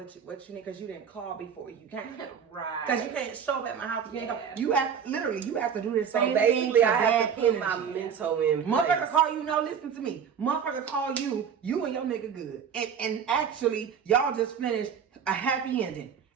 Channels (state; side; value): quieter; left; 7.4 dB